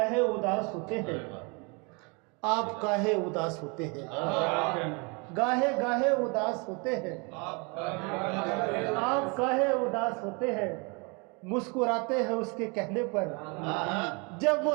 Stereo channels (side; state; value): left; quieter; 31.4 dB